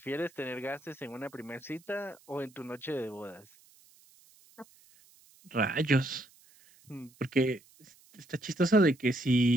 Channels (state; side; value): noise; right; hiss, 28 dB below the sound